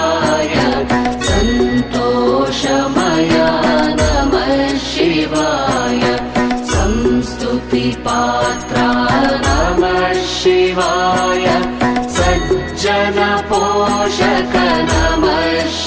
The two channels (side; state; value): both; identical; correlation 1.00